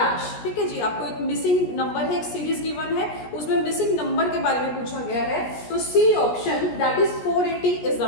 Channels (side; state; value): right; late; 17 ms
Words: ठीक है जी, आपको एक मिसिंग नंबर है, एक सीरीज गिवन है, उसमें मिसिंग नंबर के बारे में पूछा गया है। तो C option that is 480 is